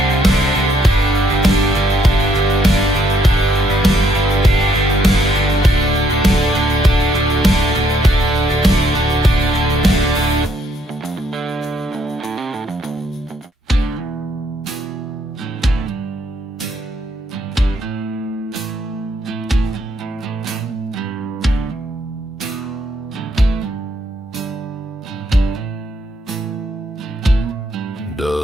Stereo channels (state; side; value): normal; both; correlation 0.70